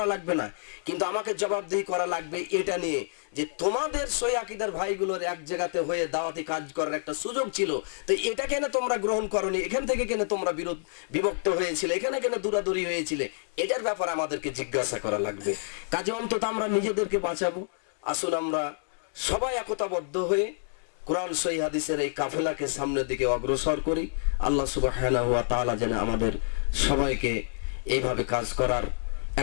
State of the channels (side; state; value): right; silent; digital silence